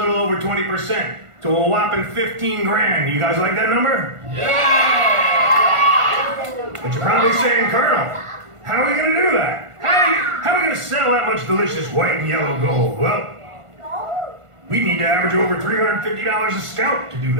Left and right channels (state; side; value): late; left; 1.5 ms